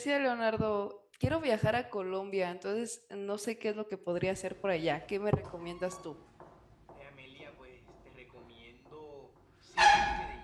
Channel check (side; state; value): both; identical; correlation 1.00